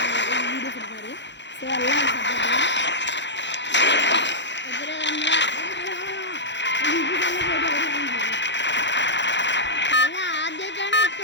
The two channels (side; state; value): right; late; 0.52 ms